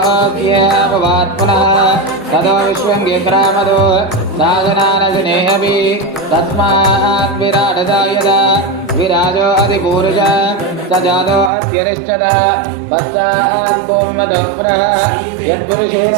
पुनः ततो विश्वङ्गिक्रामदो साधनानशनेऽपि तस्मात् विराटदा यदा विराजो अधिपूरुषः स जातो अत्यरिष्टः पश्चात् भूमदः पुनः यत्पुरुषेण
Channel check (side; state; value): left; drops out; at 11.5 s